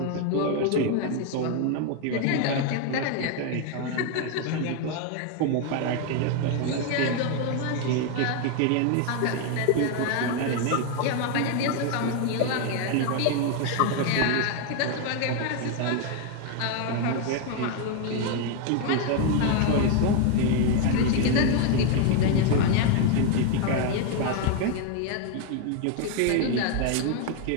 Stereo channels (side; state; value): both; different; correlation 0.01